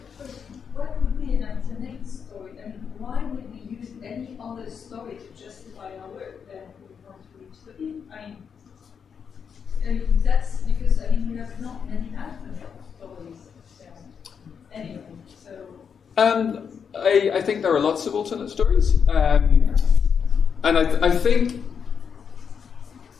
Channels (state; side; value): quieter; right; 6.8 dB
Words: What would be an alternate story? I mean, why would we use any other story to justify our work than we want to reach the people? I mean, that's because, we have not many alternate stories. Anyway, so... I think there are lots of alternate stories. And I think,